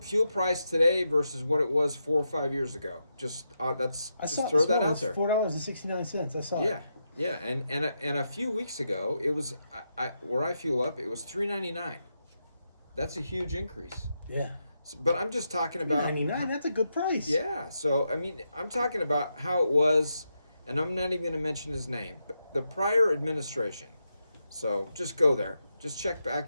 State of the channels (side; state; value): both; inverted; correlation -0.85